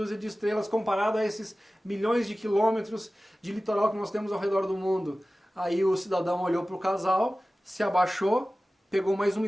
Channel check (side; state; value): both; normal; correlation 0.96